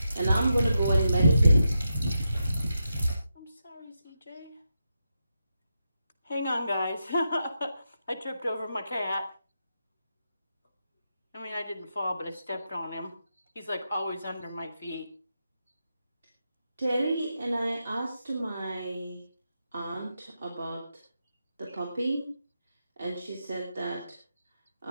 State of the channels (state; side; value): inverted; both; correlation -0.86